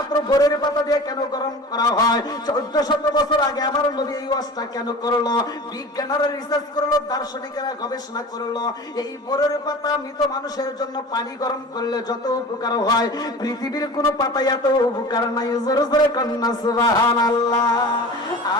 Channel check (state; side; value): normal; both; correlation 0.37